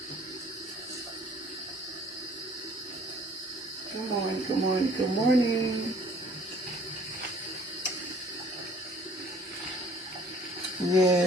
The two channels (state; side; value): normal; both; correlation 0.55